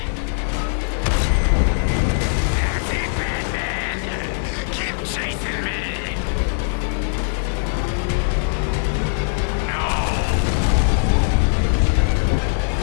That's it, Batman. Keep chasing me. No.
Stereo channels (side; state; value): right; silent; digital silence